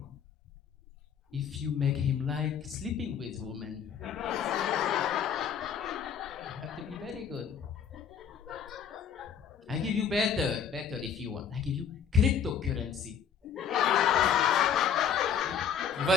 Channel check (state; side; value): quieter; right; 7.7 dB